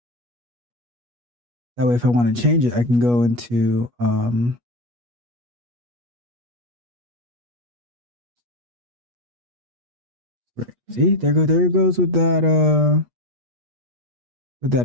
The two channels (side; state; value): left; late; 8.3 ms